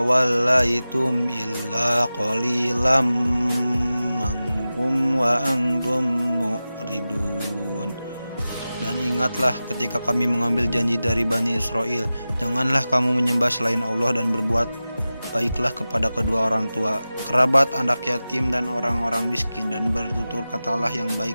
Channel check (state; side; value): inverted; both; correlation -0.95